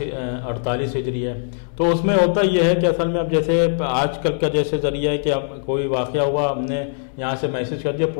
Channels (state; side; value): silent; right; digital silence